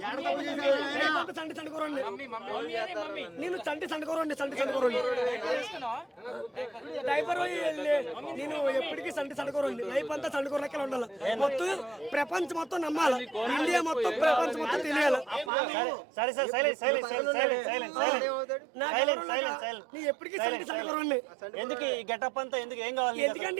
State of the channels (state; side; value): drops out; left; at 15.5 s